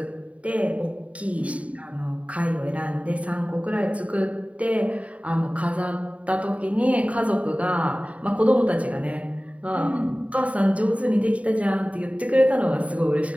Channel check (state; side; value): late; left; 0.066 ms